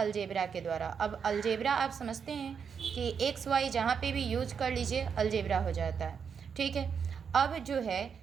के द्वारा। अब अलजेब्रा आप समझते हैं कि एक्स वाई जहाँ पे भी यूज कर लीजिए अलजेब्रा हो जाता है, ठीक है। अब जो है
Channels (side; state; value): left; quieter; 6.7 dB